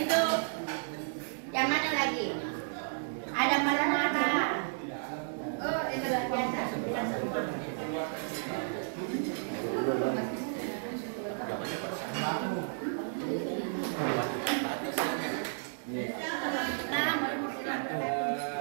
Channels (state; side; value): silent; left; digital silence